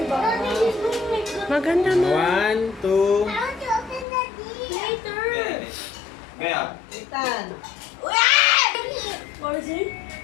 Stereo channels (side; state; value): right; drops out; at 4.0 s